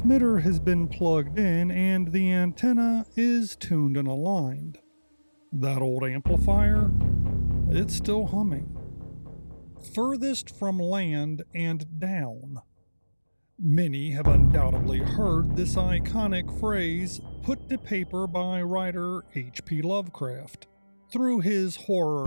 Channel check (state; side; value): inverted; both; correlation -1.00